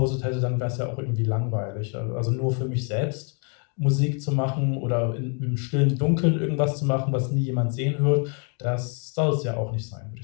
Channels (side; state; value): right; quieter; 39.0 dB